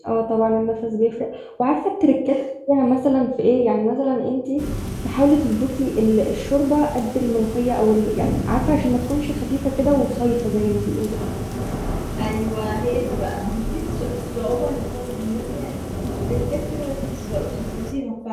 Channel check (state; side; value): identical; both; correlation 1.00